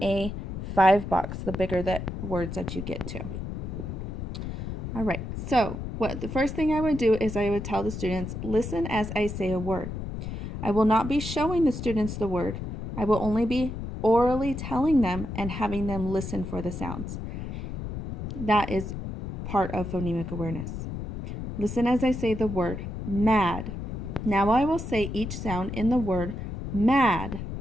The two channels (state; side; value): noise; left; rumble, 6 dB below the sound